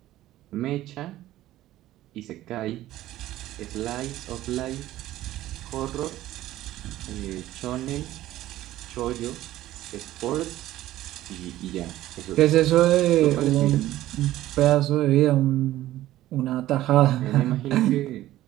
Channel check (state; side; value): quieter; left; 14.8 dB